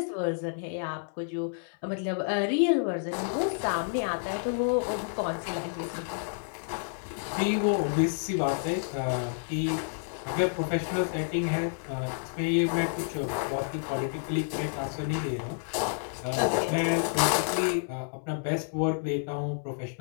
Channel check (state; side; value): silent; right; 58 dB below the other